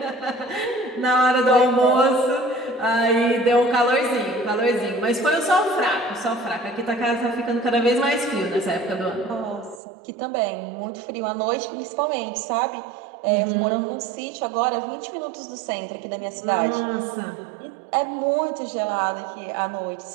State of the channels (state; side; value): drops out; left; at 9.8 s